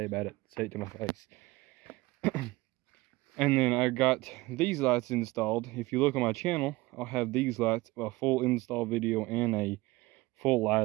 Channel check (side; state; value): left; quieter; 20.6 dB